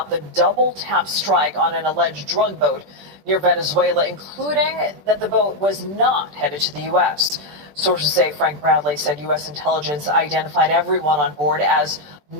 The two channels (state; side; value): late; left; 21 ms